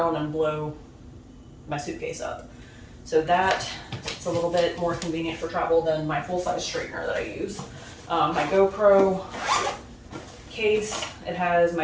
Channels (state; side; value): identical; both; correlation 1.00